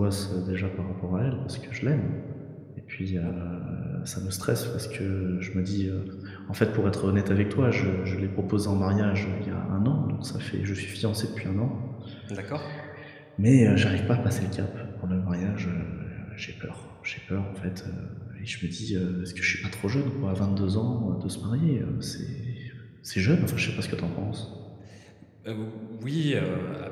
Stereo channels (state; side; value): identical; both; correlation 1.00